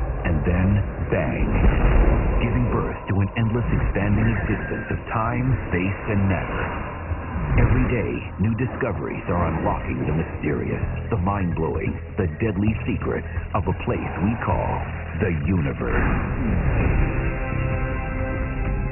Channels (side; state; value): both; identical; correlation 1.00